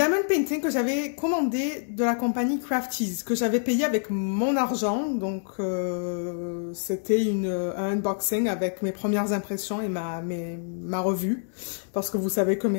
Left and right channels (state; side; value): silent; right; digital silence